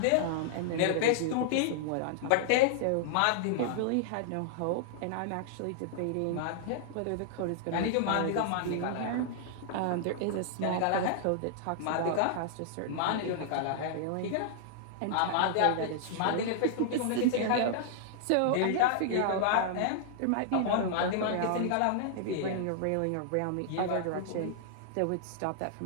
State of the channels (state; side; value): different; both; correlation -0.01